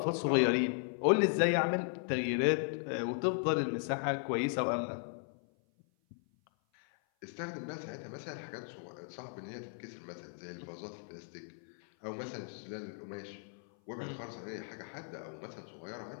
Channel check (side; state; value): right; silent; 53 dB below the other